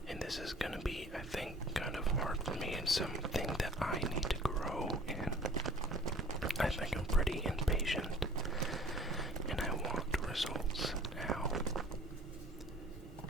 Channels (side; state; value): both; normal; correlation 0.49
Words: And this is gonna be, I think, kind of hard for me and something that I need to grow in. I think I'm pretty impatient, and I want results now.